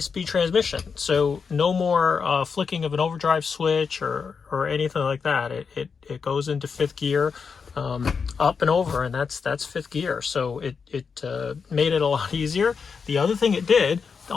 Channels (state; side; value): quieter; right; 5.7 dB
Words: transmission. So no more flicking of an overdrive switch or anything like that. It goes into 5th gear, up and over, and that's 5th gear. So it made it a lot easier. The other thing it did